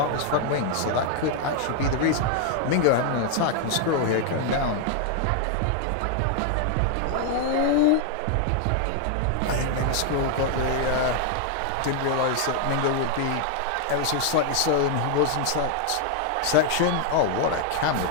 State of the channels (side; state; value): both; different; correlation 0.00